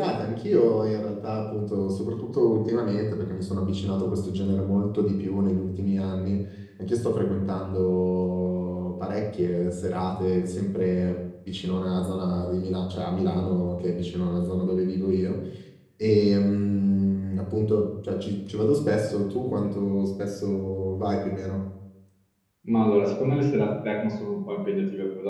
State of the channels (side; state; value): both; identical; correlation 1.00